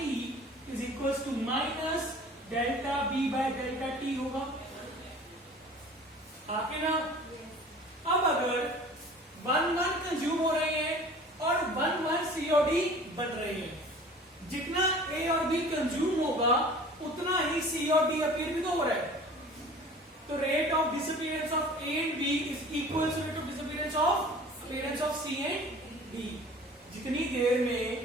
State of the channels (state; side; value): normal; both; correlation 0.45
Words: is equal to minus delta B by delta T होगा, आके ना। अब अगर 1 कंज्यूम हो रहे हैं और 1 सीओडी बन रहे हैं, जितना ए और बी कंज्यूम होगा उतना ही सी और डी अपीयर भी तो हो रहा है। तो rate of disappearance of A and B is equal to rate of disappearance of appearance of C and D. जितनी देर